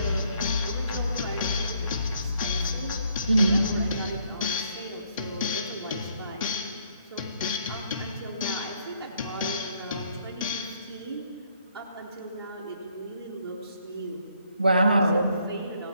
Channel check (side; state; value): both; inverted; correlation -0.69